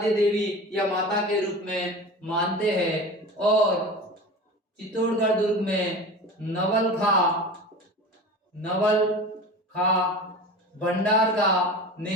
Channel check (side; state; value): both; normal; correlation 0.33